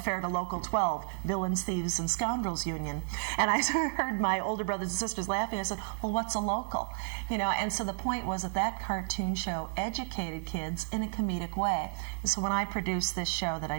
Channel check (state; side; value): silent; left; 57 dB below the other